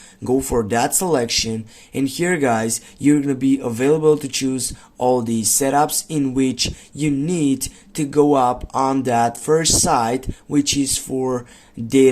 Go for that selection, and here guys, you're gonna be available to choose all these setups in which you need to go up on that first site, which is for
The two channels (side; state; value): both; identical; correlation 1.00